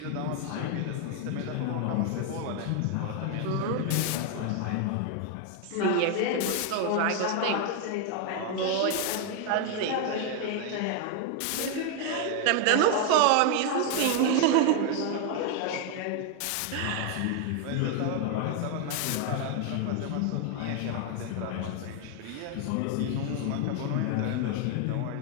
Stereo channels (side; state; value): both; different; correlation 0.01